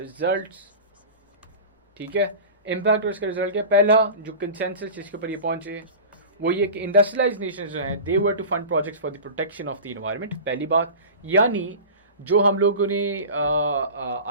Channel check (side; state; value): both; inverted; correlation -0.33